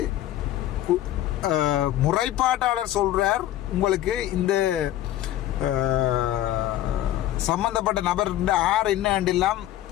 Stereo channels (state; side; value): quieter; right; 13.3 dB